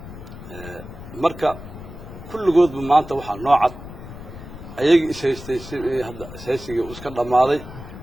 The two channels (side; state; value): left; noise; rumble, 13 dB below the sound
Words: marka kulligoodba maanta waxaa noocad ayaga ishaystay hadda isaysiga iska dhamaaday